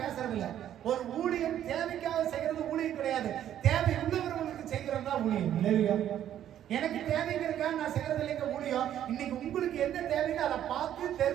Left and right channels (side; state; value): left; quieter; 11.0 dB